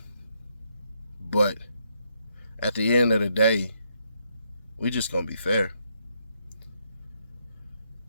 But at the end of the day, we just going to be fair.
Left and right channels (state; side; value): inverted; both; correlation -0.75